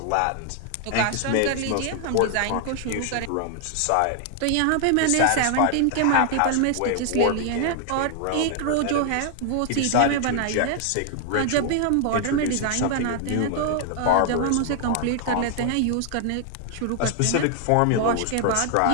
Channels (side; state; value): both; different; correlation 0.00